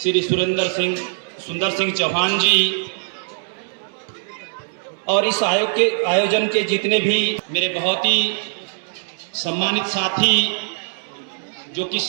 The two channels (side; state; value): left; silent; digital silence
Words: श्री सुंदर सिंह चौहान जी, और इस आयोजन के जितने भी मेरे बहुत ही सम्मानित साथी जो कि